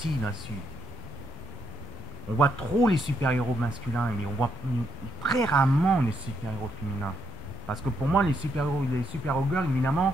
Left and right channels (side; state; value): both; normal; correlation 0.77